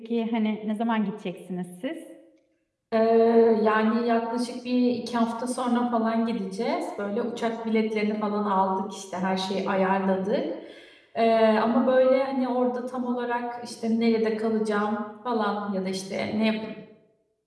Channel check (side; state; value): both; identical; correlation 1.00